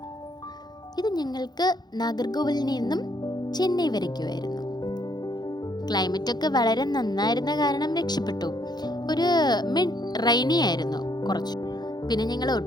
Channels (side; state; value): right; late; 0.20 ms